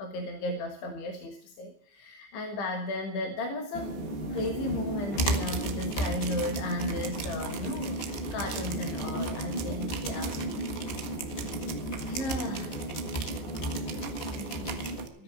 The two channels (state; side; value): late; right; 14 ms